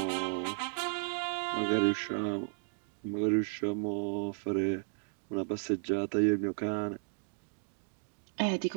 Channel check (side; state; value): left; silent; digital silence